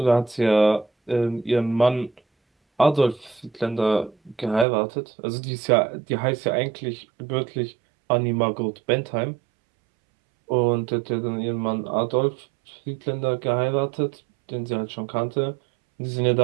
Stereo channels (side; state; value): left; drops out; at 4.7 s